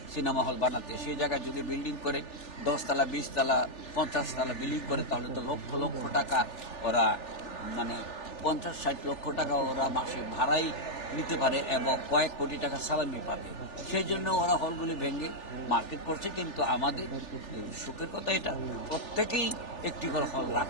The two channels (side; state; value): right; late; 3.4 ms